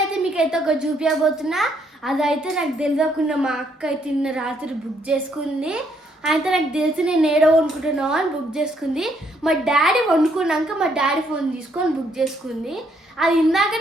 మీకైతే ఒక చూపించబోతున్నా. అదైతే నాకు తెలియకుండా మా అక్క అయితే నిన్న రాత్రి బుక్ చేసుకుంది. అయితే నాకు తెలిసి నేను ఏడో వండుకుంటున్నావు అని బుక్ చేసుకుంది. మా డాడీ వండుకున్నాక మా డాడీ ఫోన్ తీసుకొని బుక్ చేసుకుంది. అది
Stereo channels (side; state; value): both; normal; correlation 0.71